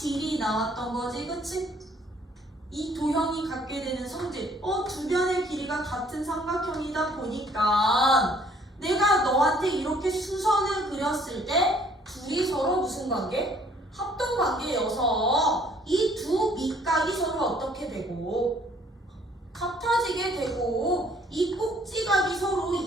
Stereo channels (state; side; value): normal; both; correlation 0.61